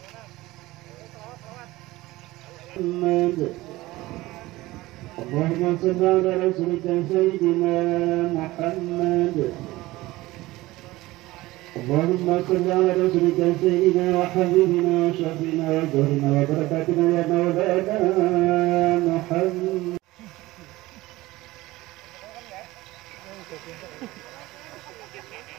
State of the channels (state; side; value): quieter; left; 18.8 dB